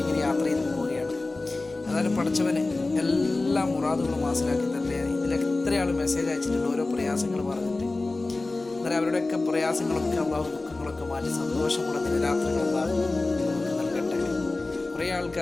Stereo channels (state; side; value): quieter; right; 3.2 dB